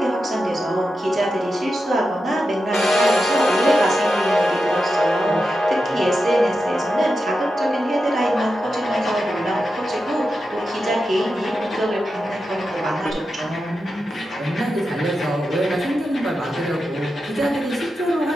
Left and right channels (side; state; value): both; normal; correlation 0.89